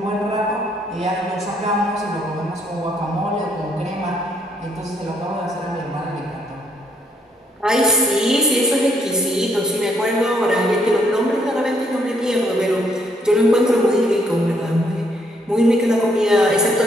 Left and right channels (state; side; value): normal; both; correlation 0.71